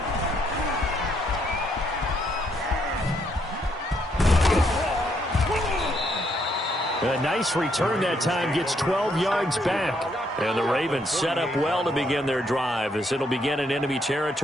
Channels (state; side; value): normal; both; correlation 0.73